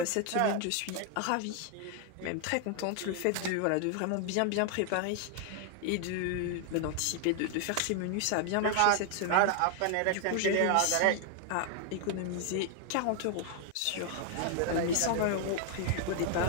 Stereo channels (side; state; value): both; different; correlation 0.00